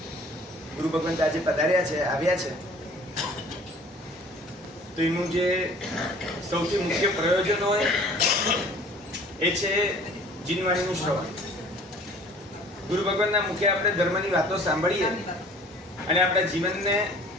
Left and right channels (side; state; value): both; normal; correlation 0.50